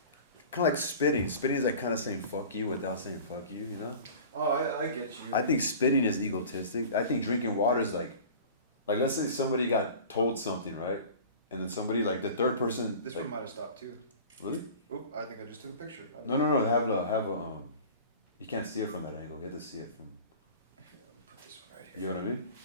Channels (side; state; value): both; inverted; correlation -0.40